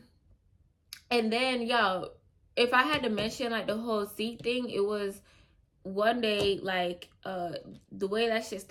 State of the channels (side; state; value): both; identical; correlation 1.00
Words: then, y'all, if I had to mention like the whole seat thing, it was one day, like, the way that shit